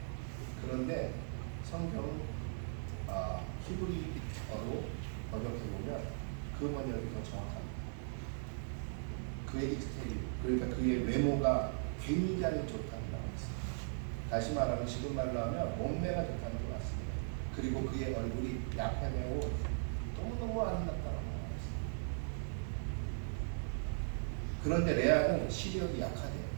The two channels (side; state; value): left; silent; digital silence